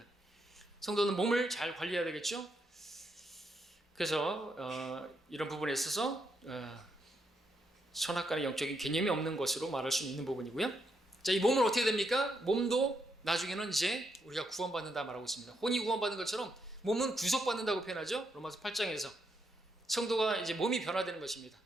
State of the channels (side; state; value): both; normal; correlation 0.79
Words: 성도는 몸을 잘 관리해야 되겠죠. 그래서 이런 부분에 있어서 선악간의 영적인 개념이 없는 것으로 말할 수 있는 부분이고요. 자, 이 몸은 어떻게 됩니까? 몸도 나중에는 이제 우리가 구원받는다 말하고 있습니다. 혼이 구원받는 것처럼 몸은 구속받는다고 표현하죠. 로마서 8장에서 성도가 이제 몸이 변화되는 것입니다.